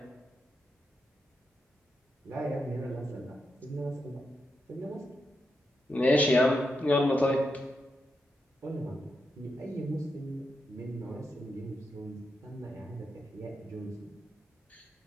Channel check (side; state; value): both; normal; correlation 0.85